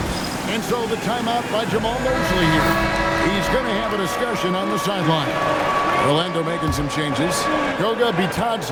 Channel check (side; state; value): both; identical; correlation 1.00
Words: And so the timeout by Jamal Mosley here. He's going to have a discussion on the sideline. Orlando making some changes. Goga